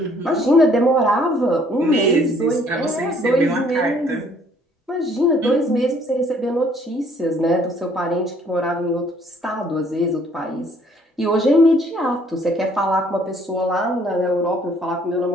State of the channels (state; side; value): normal; both; correlation 0.62